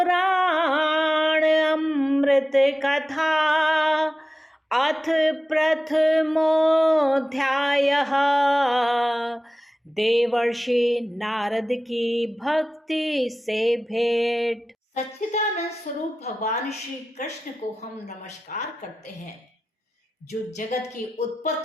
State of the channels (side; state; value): both; normal; correlation 0.95